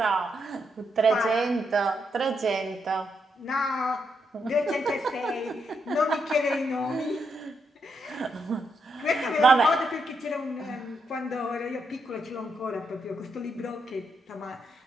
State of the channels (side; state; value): both; normal; correlation 0.80